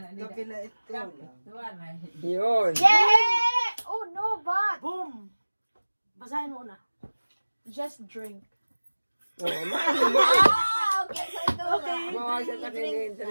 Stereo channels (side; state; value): both; inverted; correlation -1.00